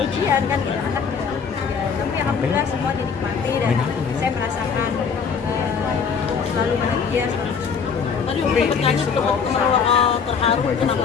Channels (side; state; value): right; quieter; 6.1 dB